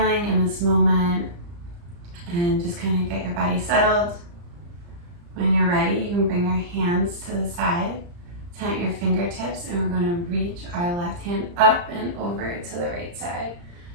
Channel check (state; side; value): late; left; 35 ms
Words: in this moment and just kind of get your body settled. When you're ready, you can bring your hands to the side, tent your fingertips, and we're going to reach our left hand up and over to the right side.